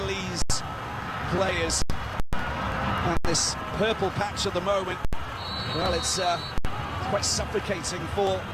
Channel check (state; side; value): identical; both; correlation 1.00